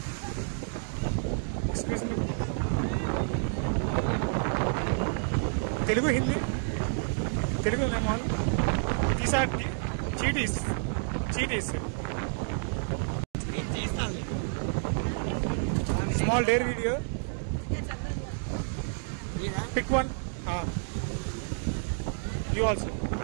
Excuse me. Telugu, Hindi? Telugu, all. These are cheaties. Small dare video. Pick one. You also.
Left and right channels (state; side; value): silent; left; 58 dB below the other